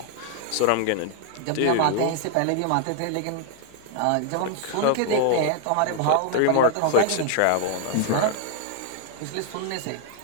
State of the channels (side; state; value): both; different; correlation 0.00